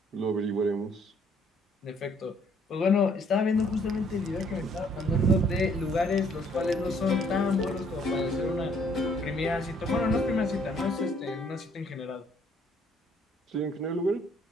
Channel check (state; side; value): normal; both; correlation 0.64